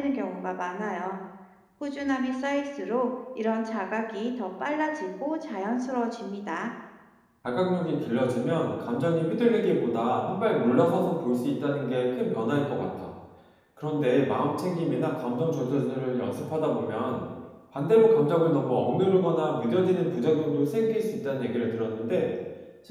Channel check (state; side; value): identical; both; correlation 1.00